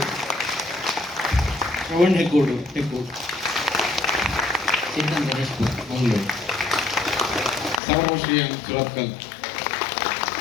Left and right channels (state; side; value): drops out; right; at 7.8 s